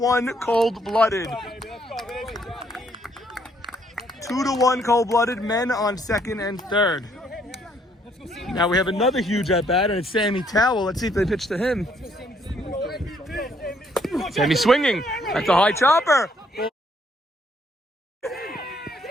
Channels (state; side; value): normal; both; correlation 0.68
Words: cold-blooded. 2-1 cold-blooded. Men on second and third. Now we have another huge at-bat, and it's Sammy Towell. Let's see if they pitch to him. Sammy swinging. That's a high chopper.